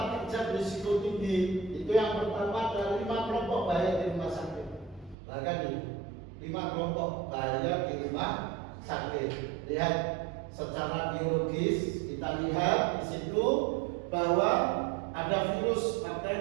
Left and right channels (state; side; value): drops out; left; at 5.2 s